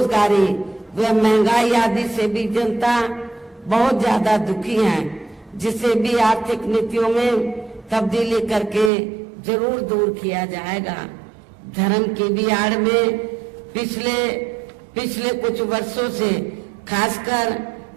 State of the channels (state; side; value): drops out; left; at 8.9 s